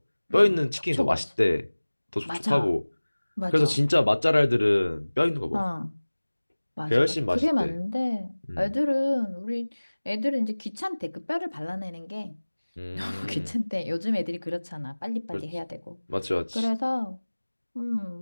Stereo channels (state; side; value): inverted; both; correlation -1.00